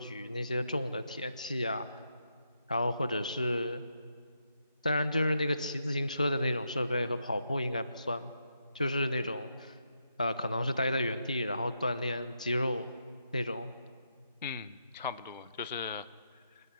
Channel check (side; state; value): both; inverted; correlation -0.82